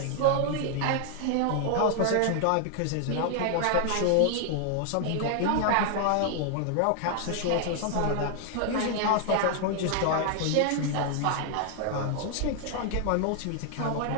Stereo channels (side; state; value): both; different; correlation 0.00